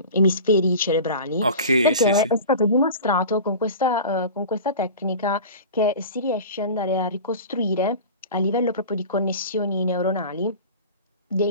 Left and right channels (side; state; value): both; inverted; correlation -0.36